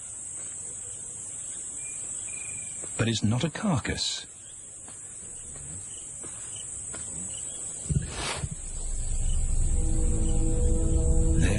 But it's not a carcass.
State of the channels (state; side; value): identical; both; correlation 1.00